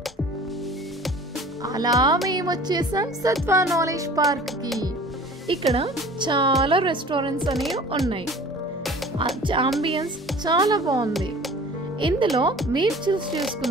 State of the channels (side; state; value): both; normal; correlation 0.45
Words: అలా మేము వచ్చేసాం సత్వా నాలెడ్జ్ పార్క్కి. ఇక్కడ చాలా రెస్టారెంట్స్ అనేవి ఉన్నాయి. అంబియన్స్ చాలా బాగుంది. ఇందులో మీరు చూస్